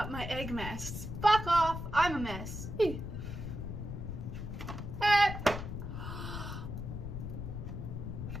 my egg mess. Fuck off, I'm a mess. Ew.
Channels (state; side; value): noise; left; rumble, 6 dB below the sound